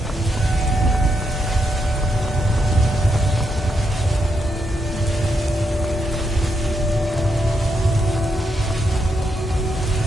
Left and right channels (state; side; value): normal; both; correlation 0.81